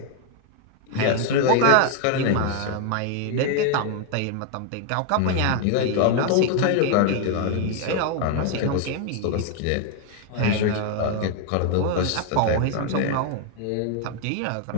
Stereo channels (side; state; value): both; different; correlation 0.01